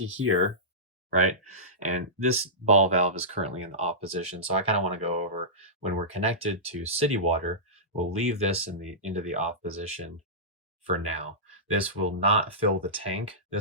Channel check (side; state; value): both; normal; correlation -0.18